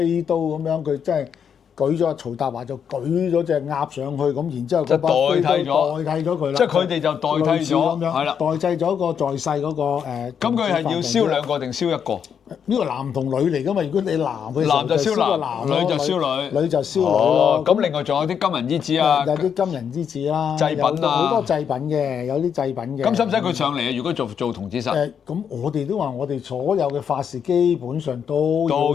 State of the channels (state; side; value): quieter; right; 7.6 dB